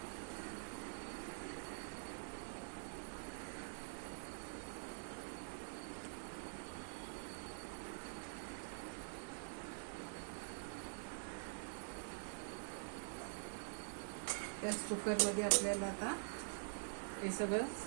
त्याच कुकरमध्ये आपल्याला आता हे सगळं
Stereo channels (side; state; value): left; silent; digital silence